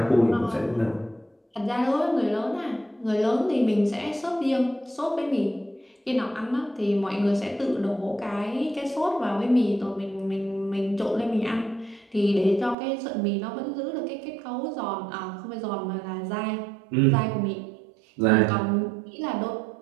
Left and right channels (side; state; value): left; drops out; at 12.8 s